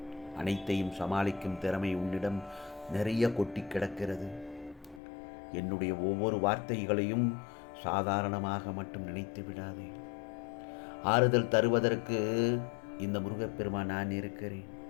அனைத்தையும் சமாளிக்கும் திறமை உன்னிடம் நிறைய கொட்டி கிடக்கிறது. என்னுடைய ஒவ்வொரு வார்த்தைகளையும் சாதாரணமாக மட்டும் நினைத்து விடாதே. ஆறுதல் தருவதற்கு இந்த முருகப்பெருமான் நான் இருக்கிறேன்.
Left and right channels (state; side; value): drops out; right; at 5.0 s